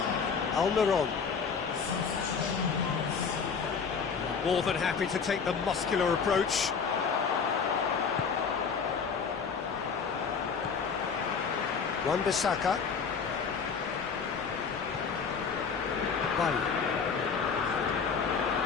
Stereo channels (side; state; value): right; quieter; 5.9 dB